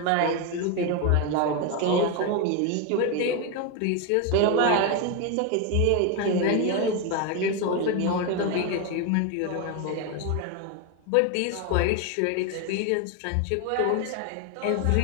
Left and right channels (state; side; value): different; both; correlation 0.02